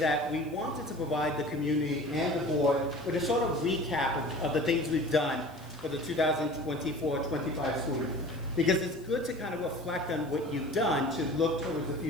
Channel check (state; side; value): noise; left; hiss, 26 dB below the sound